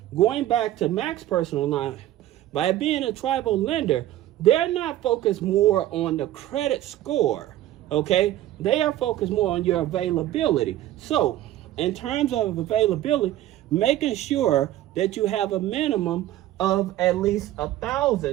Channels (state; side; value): quieter; left; 13.9 dB